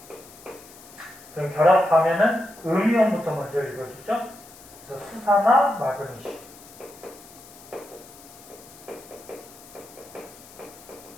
그럼 결합하면은 음이온부터 먼저 읽어주죠. 그래서 수산화 마그네슘.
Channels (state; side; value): noise; left; hiss, 20 dB below the sound